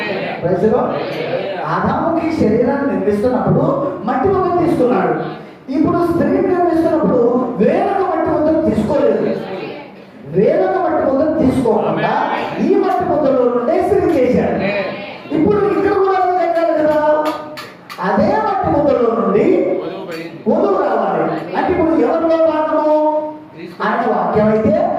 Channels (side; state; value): both; identical; correlation 1.00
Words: ఆదాముకి శరీరాన్ని నిర్మిస్తున్నప్పుడు మట్టి ముద్ర తీసుకున్నాడు. ఇప్పుడు స్త్రీని నిర్మిస్తున్నప్పుడు వేరొక మట్టి ముద్ర తీసుకోలేదు. వేరొక మట్టి ముద్ర తీసుకోకుండా ఈ మట్టి ముద్రలో నుండే స్త్రీ చేశాడు. ఇప్పుడు ఇక్కడ కూడా జరగాలి కదా, అదే మట్టి ముద్రలో నుండి వధువు రావాలి. అంటే ఇప్పుడు ఎవరిలో భాగము? ఆయన వాక్యం అయితే